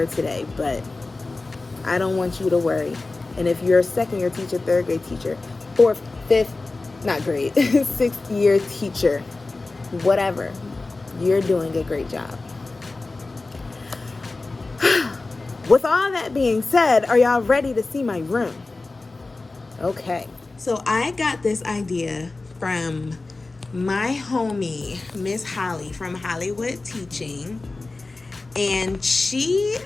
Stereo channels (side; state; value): right; quieter; 3.4 dB